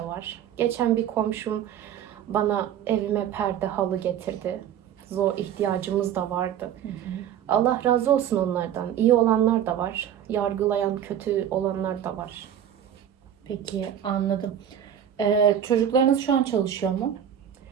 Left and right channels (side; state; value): left; quieter; 9.7 dB